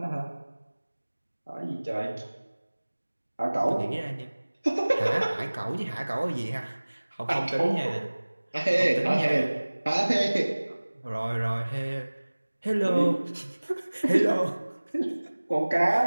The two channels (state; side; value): inverted; both; correlation -1.00